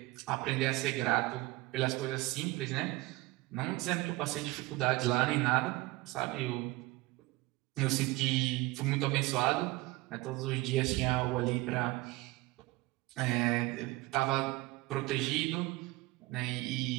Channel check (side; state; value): left; quieter; 20.9 dB